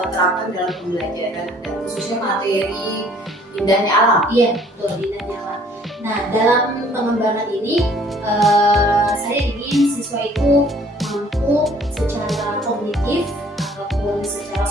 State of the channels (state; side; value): normal; both; correlation 0.57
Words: terapkan dalam pembelajaran dan khususnya materi indahnya alam? Iya betul, indahnya alam. Nah dalam pengembangan ini saya ingin siswa itu mampu secara kognitif ataupun secara